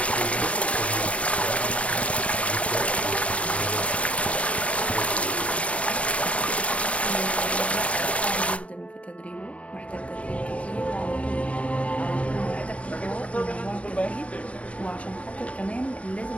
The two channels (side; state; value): right; late; 0.065 ms